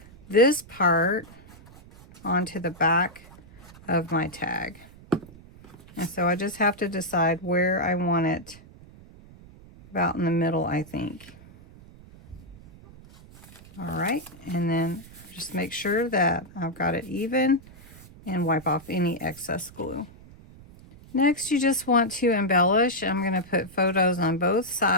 this part onto the back of my tag. And so I just have to decide where I want it, about in the middle, I think. All right, and then just make sure that I've got it even and wipe off any excess glue. Next, you just want to embellish. I'm going to put photos on both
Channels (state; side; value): noise; right; rumble, 21 dB below the sound